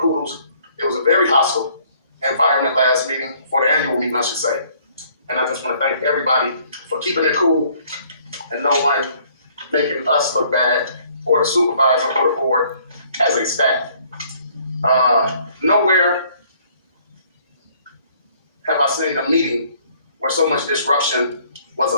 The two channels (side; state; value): both; inverted; correlation -0.61